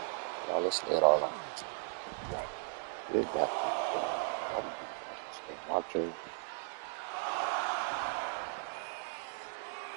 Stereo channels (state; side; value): silent; left; digital silence